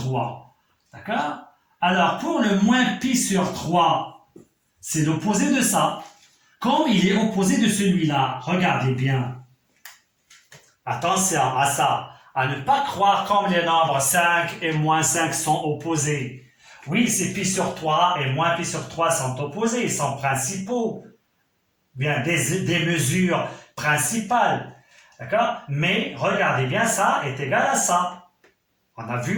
D'accord? Alors, pour le moins pi sur 3, c'est l'opposé de ça. Comme il est opposé de celui-là, regardez bien. Attention à ça, à ne pas croire comme les nombres 5 et moins 5 sont opposés. Oui, c'est pi sur 3 et moins pi sur 3 sont opposés, ils sont principaux. Bien, des mesures principales. D'accord? Mais regardez bien, ça est égal à ça. On a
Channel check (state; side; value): identical; both; correlation 1.00